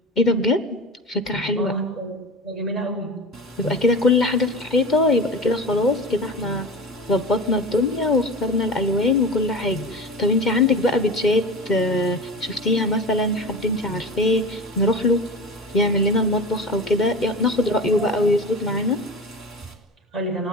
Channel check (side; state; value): both; normal; correlation 0.31